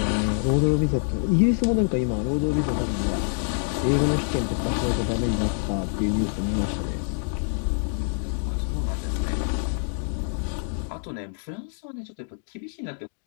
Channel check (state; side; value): silent; right; digital silence